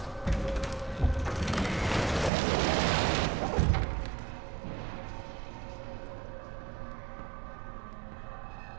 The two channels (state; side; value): drops out; left; at 2.3 s